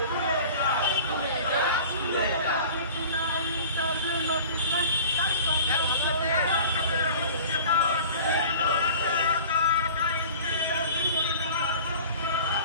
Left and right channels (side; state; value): both; inverted; correlation -0.42